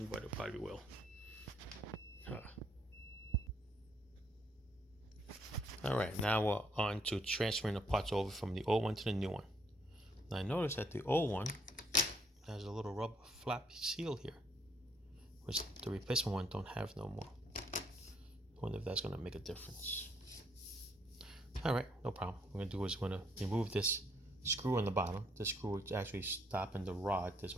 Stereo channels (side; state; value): both; normal; correlation 0.69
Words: but it probably will. All right, now we're on to transferring the parts over from the old one to the new one. Now I noticed that the old one has a little rubber flap seal here, which the replacement one don't have no more. I wonder if that's going to make a difference. All right, no problem. What we're going to do is we're going to remove this screw on the bottom. This screw is actually stopping the rod. There's